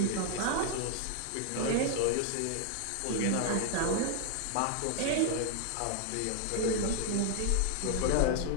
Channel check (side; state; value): both; different; correlation 0.00